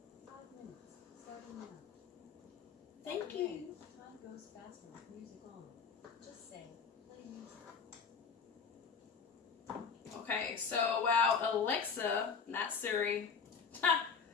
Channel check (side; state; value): right; quieter; 6.0 dB